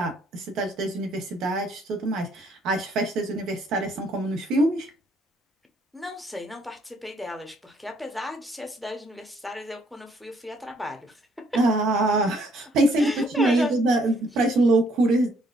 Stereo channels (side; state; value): both; normal; correlation 0.67